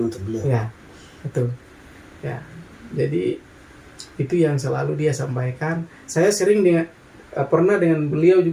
beliau. Ya, betul. Ya, jadi itu yang selalu dia sampaikan. Saya sering pernah dengan beliau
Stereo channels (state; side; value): identical; both; correlation 1.00